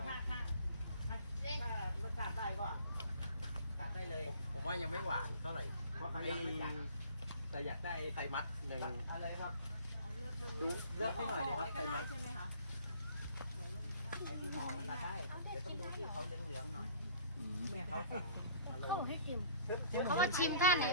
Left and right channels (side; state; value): both; inverted; correlation -0.51